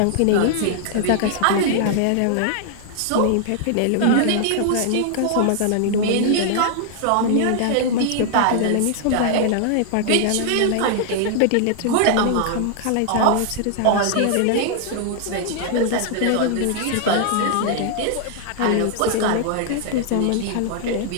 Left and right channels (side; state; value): both; different; correlation -0.01